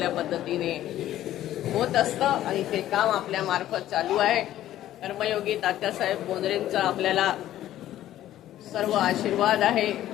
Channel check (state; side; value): quieter; right; 13.1 dB